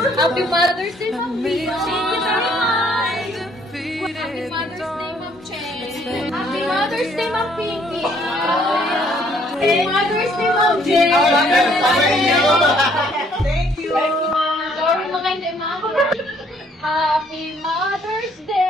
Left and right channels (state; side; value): normal; both; correlation 0.64